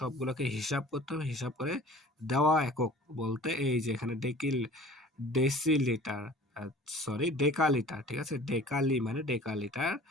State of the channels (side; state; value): both; normal; correlation 0.45